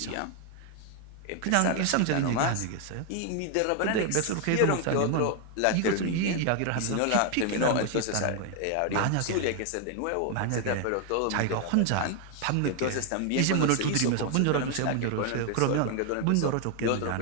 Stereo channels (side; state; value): both; different; correlation 0.00